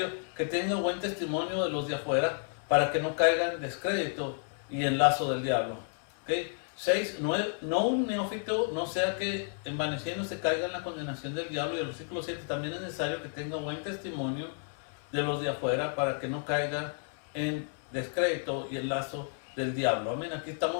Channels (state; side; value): silent; right; 57 dB below the other